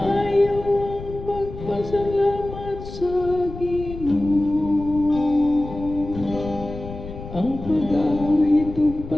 ang pagpasalamat sa Ginoo, ang pag-awit ug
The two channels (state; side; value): noise; left; rumble, 12 dB below the sound